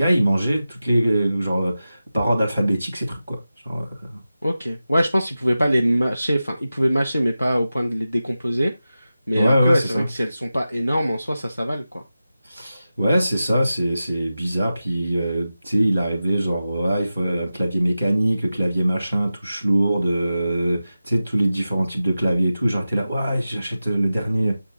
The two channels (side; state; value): both; inverted; correlation -0.93